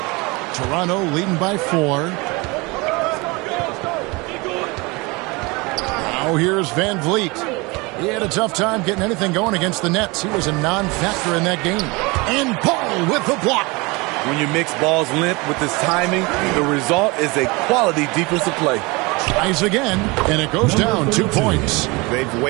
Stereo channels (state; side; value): quieter; left; 25.7 dB